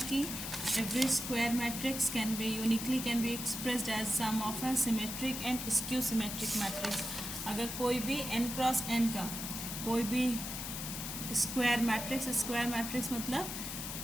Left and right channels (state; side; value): noise; left; hiss, 5 dB below the sound